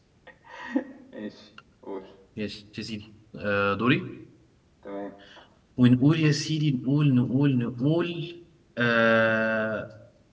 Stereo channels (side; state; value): both; identical; correlation 1.00